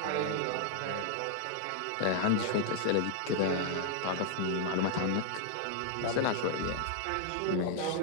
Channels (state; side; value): different; both; correlation 0.00